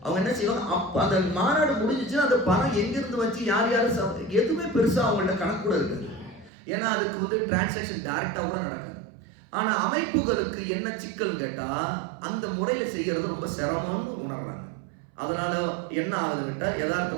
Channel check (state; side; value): drops out; left; at 6.5 s